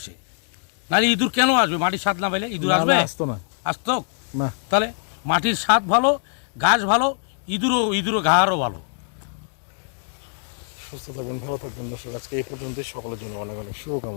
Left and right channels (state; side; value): silent; right; 59 dB below the other